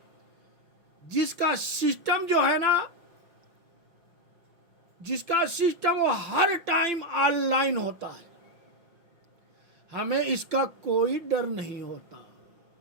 जिसका सिस्टम जो है ना, जिसका सिस्टम वो हर टाइम ऑनलाइन होता है, हमें इसका कोई डर नहीं होता,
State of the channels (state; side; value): late; left; 5.9 ms